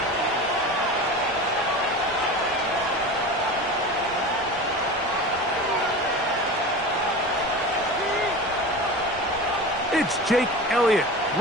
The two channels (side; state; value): both; normal; correlation 0.31